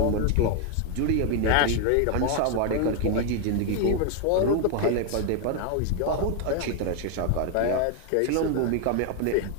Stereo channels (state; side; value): different; both; correlation 0.01